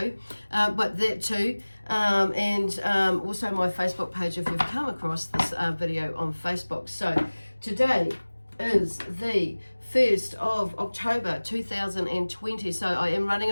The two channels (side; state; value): both; inverted; correlation -1.00